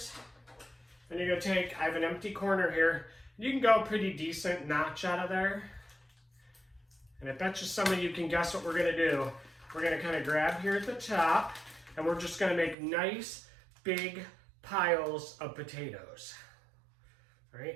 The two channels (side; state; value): left; drops out; at 12.8 s